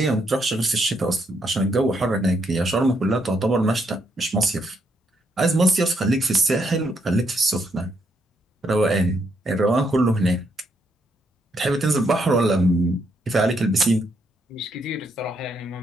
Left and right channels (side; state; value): both; normal; correlation 0.75